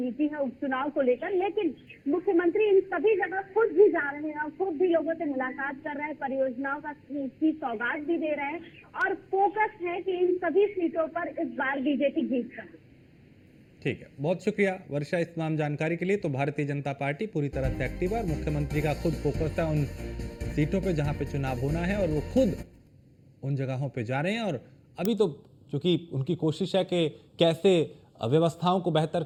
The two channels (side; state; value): both; identical; correlation 1.00